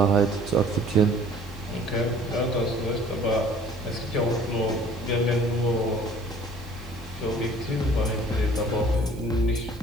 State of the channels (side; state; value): right; noise; hiss, 25 dB below the sound